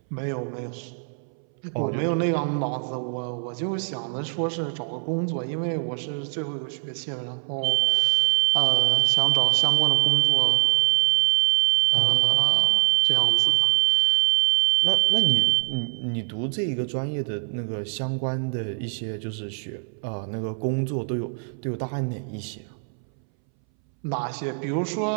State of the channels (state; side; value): silent; left; 62 dB below the other